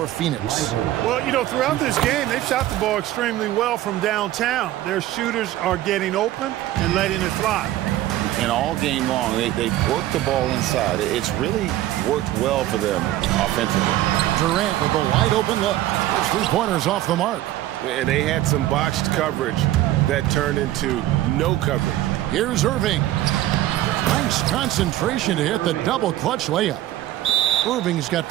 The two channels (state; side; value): quieter; left; 14.5 dB